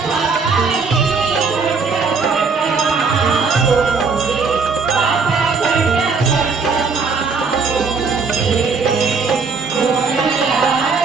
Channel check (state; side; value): quieter; left; 4.8 dB